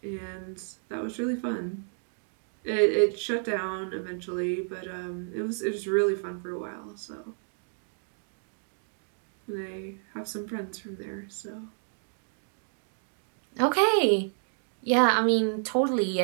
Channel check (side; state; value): left; silent; digital silence